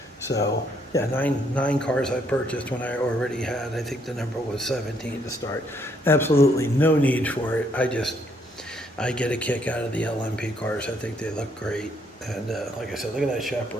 So, 9 cars I purchased when I already had, I think the number was 17 to start. Absolutely no need for it. I get a kick out of the LMP cars. I think they look great. And like I said, look at that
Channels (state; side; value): normal; both; correlation 0.70